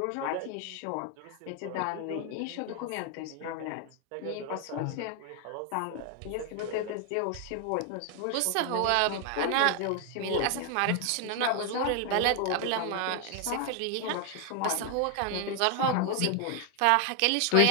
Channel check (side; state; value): both; different; correlation 0.00